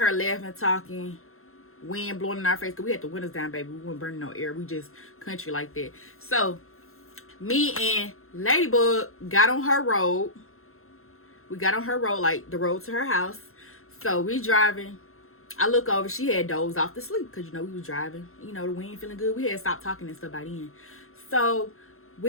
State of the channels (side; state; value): right; late; 0.62 ms